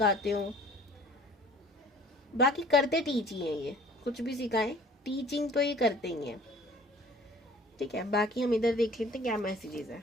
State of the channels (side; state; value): both; normal; correlation 0.50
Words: हो। बाकी करते टीच ही हैं ये, कुछ भी सिखाएं, टीचिंग तो ये करते ही हैं, ठीक है। बाकी हम इधर देख लेते हैं क्या मैसेजेस है।